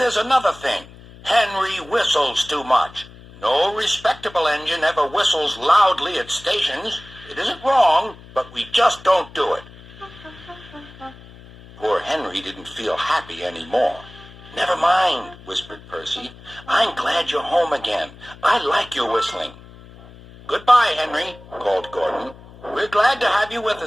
another thing. Henry whistles too much. No respectable engine ever whistles loudly at stations. It isn't wrong, but we just don't do it." Poor Henry didn't feel happy anymore. "Never mind," whispered Percy. "I'm glad you're home again. I like your whistling." "Goodbye, Henry," called Gordon. "We're glad to have you with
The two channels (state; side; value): noise; left; hum, 20 dB below the sound